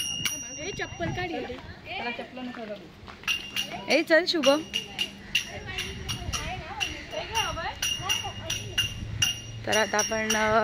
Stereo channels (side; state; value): both; identical; correlation 1.00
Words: चप्पल काढ. ए चल शुभम. तर आता आपण